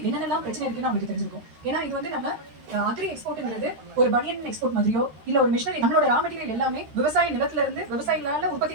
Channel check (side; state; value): left; late; 13 ms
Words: என்னென்னலாம் பிரச்சனை இருக்குன்னு அவங்களுக்கு தெரிஞ்சிருக்கும். ஏன்னா இது வந்து நம்ம அக்ரி எக்ஸ்போர்ட்ங்கிறது ஒரு பனியன் எக்ஸ்போர்ட் மாதிரியோ இல்லை ஒரு மிஷினரி. நம்மளோட ரா மெட்டீரியல் எல்லாமே விவசாய நிலத்துல இருந்து விவசாயிகளால